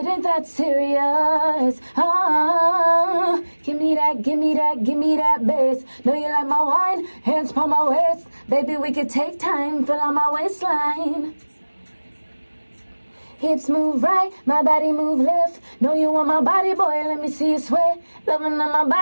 ain't that serious. Give me that, give me that, give me that bass. Know you like my wine, hands on my waist. Baby, we could take time, fill out my waistline. Hips move right, my body move left. Know you want my body, boy, let me see you sweat. Loving on my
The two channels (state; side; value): inverted; both; correlation -1.00